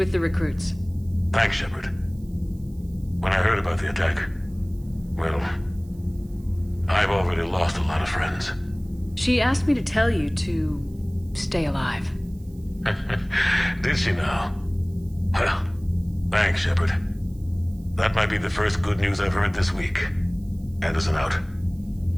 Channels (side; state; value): right; noise; hiss, 29 dB below the sound